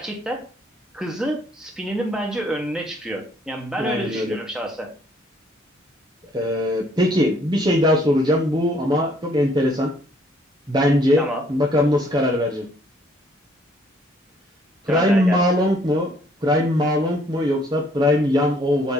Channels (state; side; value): normal; both; correlation 0.63